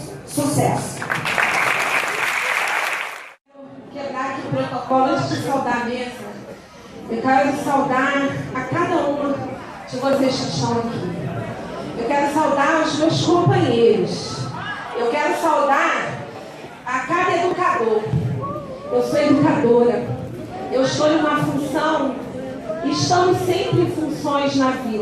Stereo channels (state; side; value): identical; both; correlation 1.00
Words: Sucesso! Quebrar aqui o protocolo antes de saudar a mesa. Eu quero saudar a cada uma de vocês que estão aqui. Eu quero saudar os meus companheiros. Eu quero saudar a cada educador. Eu sou educadora. Eu estou em uma função e estamos sempre em funções na